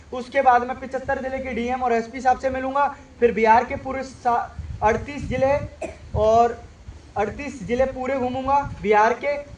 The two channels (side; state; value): both; identical; correlation 1.00